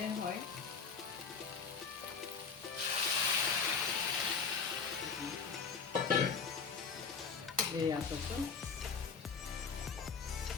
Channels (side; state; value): right; quieter; 5.7 dB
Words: হয়। এয়া চাওকচোন,